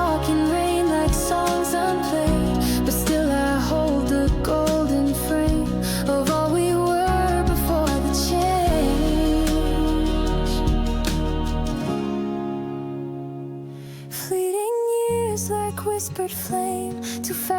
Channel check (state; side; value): identical; both; correlation 1.00